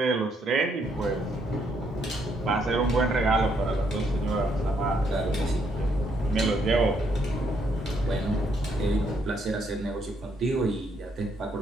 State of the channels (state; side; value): normal; both; correlation 0.73